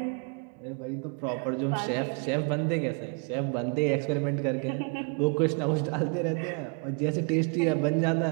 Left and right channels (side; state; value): left; quieter; 37.5 dB